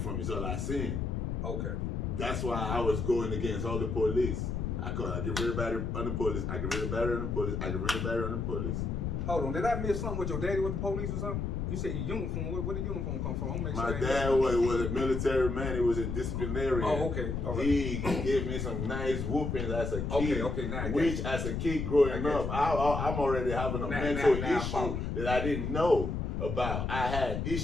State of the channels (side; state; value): left; noise; rumble, 2 dB below the sound